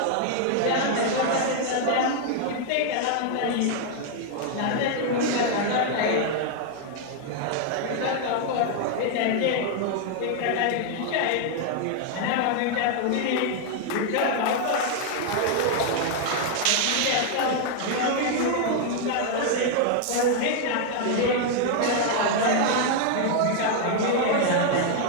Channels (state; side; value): different; both; correlation 0.00